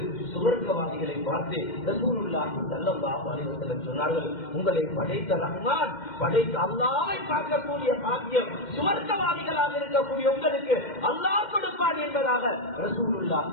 சுவர்க்கவாதிகளை பார்த்து ரசூலுல்லாஹி ஸல்லல்லாஹு அலைஹி வஸல்லம் சொன்னார்கள், உங்களை படைத்த ரஹ்மான், படைத்த அல்லாஹ்வை பார்க்கக்கூடிய பாக்கியம் சுவர்க்கவாதிகளாக இருக்கக்கூடிய உங்களுக்கு அல்லாஹ் கொடுப்பான் என்பதாக ரசூலுல்லாஹி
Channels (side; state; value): right; late; 2.1 ms